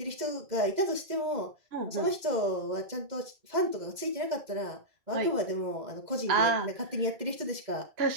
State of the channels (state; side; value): late; left; 2.1 ms